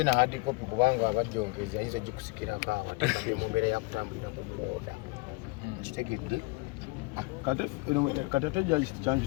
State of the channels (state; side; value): quieter; right; 25.4 dB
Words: na hard copy kubanga abajjongezi ayinza ogikusikirako awo ate mu mbeera yakutambulira ku booda kitegedde kati ate judge kyange